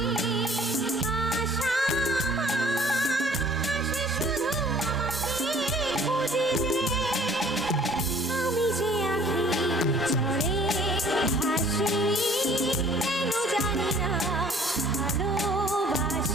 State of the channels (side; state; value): both; normal; correlation 0.54